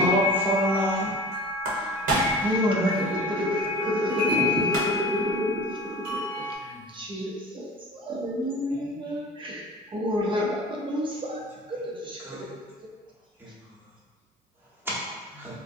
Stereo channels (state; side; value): normal; both; correlation 0.39